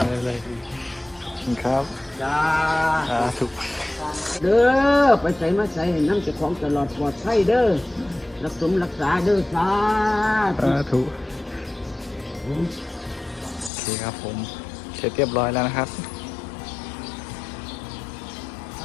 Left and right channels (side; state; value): right; drops out; at 13.7 s